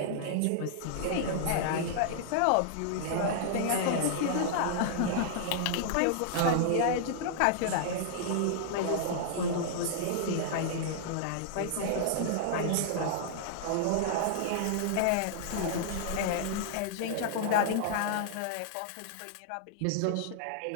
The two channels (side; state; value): both; different; correlation -0.01